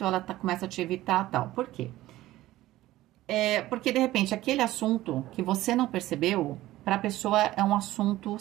ela começa a te evitar, tal. Por quê? Porque de repente aquele assunto que você não percebeu, para a pessoa é um assunto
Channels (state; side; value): quieter; left; 16.0 dB